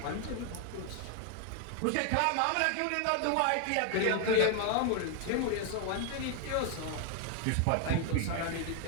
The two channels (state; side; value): different; both; correlation 0.00